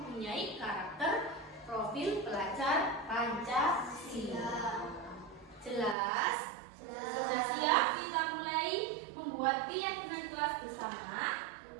karakter profil pelajar Pancasila. Jelas? Sudah siap? Kita mulai membuat keyakinan kelas bersama.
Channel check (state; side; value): drops out; left; at 6.0 s